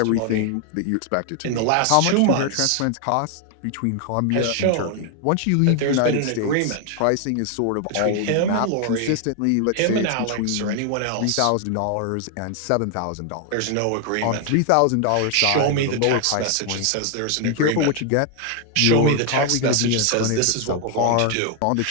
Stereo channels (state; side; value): different; both; correlation 0.00